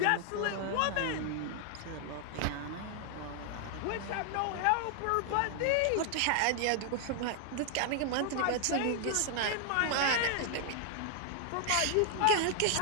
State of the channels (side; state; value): both; different; correlation 0.00